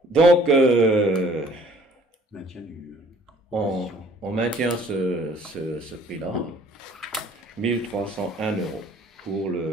Donc, on maintient ce prix-là, 1301 euros pour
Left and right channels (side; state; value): both; normal; correlation 0.55